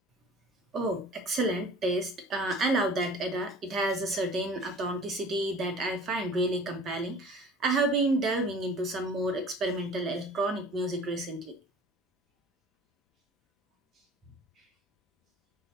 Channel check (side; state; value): both; normal; correlation 0.46